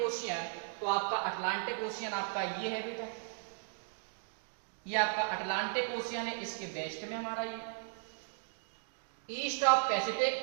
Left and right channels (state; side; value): silent; left; digital silence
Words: ओशियन, तो आपका अटलांटिक ओशियन आपका ये है बेटा, ये आपका अटलांटिक ओशियन है, इसके वेस्ट में हमारा ये। ईस्ट ऑफ